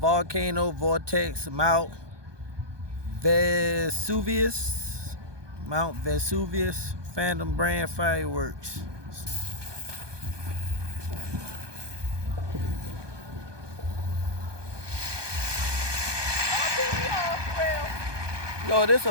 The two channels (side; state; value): left; late; 1.2 ms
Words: Vortex Mount Vesuvius. Mount Vesuvius Phantom brand fireworks. Yo, this